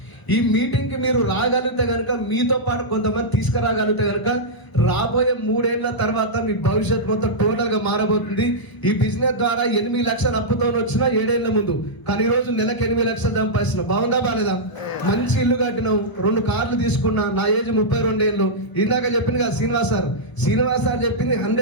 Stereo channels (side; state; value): right; late; 1.0 ms